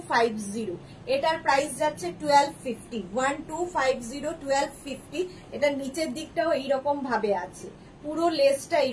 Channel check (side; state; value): both; identical; correlation 1.00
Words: এটার প্রাইস যাচ্ছে 1250, 1250, 1250। এটার নিচের দিকটাও এইরকম ভাবে আছে, পুরো লেসটা